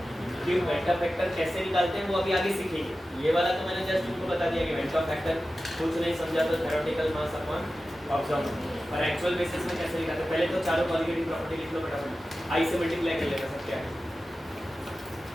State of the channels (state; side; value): normal; both; correlation 0.94